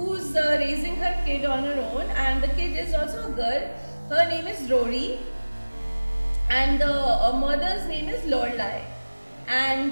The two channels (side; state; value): both; inverted; correlation -1.00